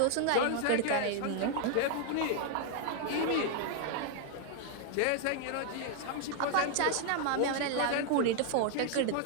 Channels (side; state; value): both; different; correlation 0.00